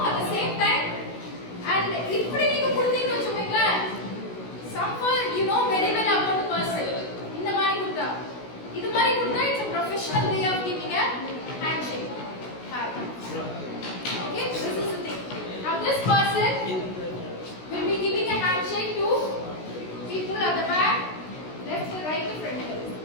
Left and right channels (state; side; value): late; right; 16 ms